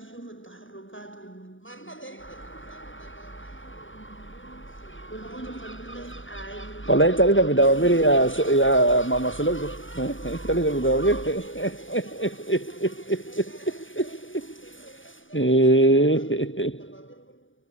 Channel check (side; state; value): right; late; 0.57 ms